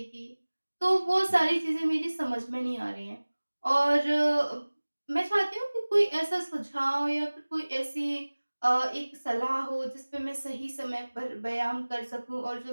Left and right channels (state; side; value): inverted; both; correlation -1.00